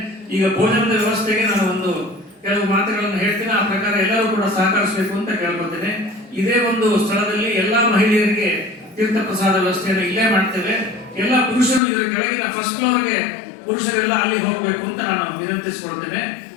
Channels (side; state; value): right; drops out; at 11.8 s